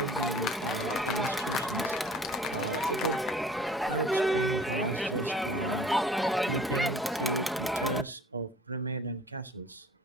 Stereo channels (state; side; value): normal; both; correlation 0.50